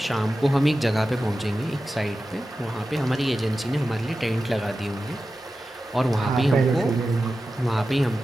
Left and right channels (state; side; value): normal; both; correlation 0.93